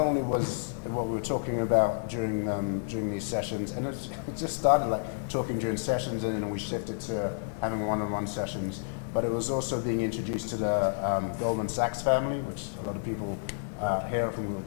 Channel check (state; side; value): silent; right; digital silence